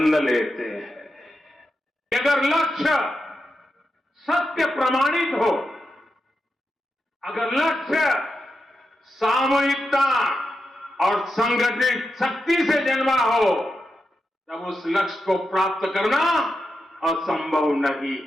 लेते हैं कि अगर लक्ष्य सत्य प्रमाणित हो, अगर लक्ष्य सामूहिकता और संगठित शक्ति से जन्मा हो, तब उस लक्ष्य को प्राप्त करना असंभव नहीं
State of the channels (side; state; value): both; normal; correlation 0.88